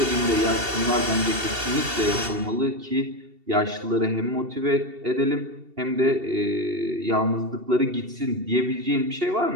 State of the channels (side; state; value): left; late; 2.7 ms